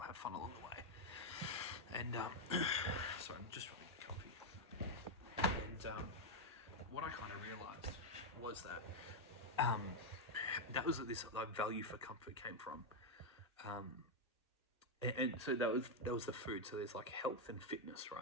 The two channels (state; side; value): normal; both; correlation 0.01